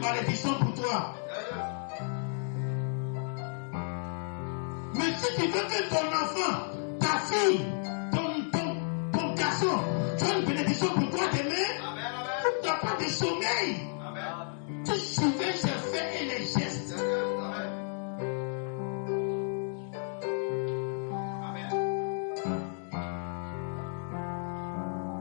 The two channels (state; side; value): silent; right; 57 dB below the other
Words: pour toi. Mais si tu veux que ton enfant, ta fille, ton garçon, soit une bénédiction pour toi demain, tu n'as pas de sommeil. Tu surveilles ses faits et les gestes.